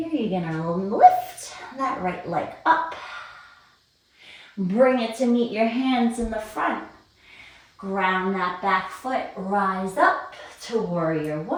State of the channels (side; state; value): both; identical; correlation 1.00